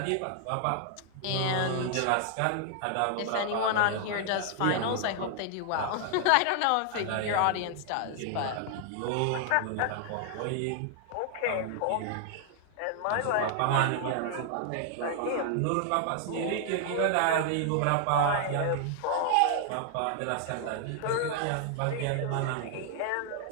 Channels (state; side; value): different; both; correlation 0.00